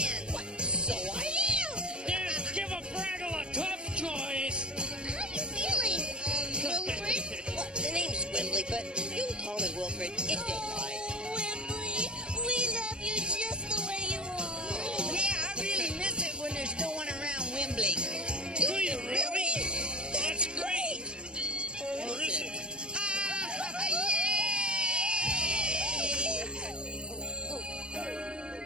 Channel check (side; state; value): left; late; 0.054 ms